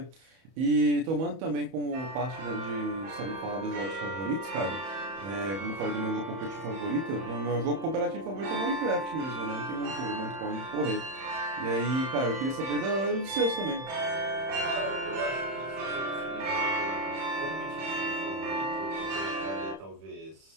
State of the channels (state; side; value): late; left; 31 ms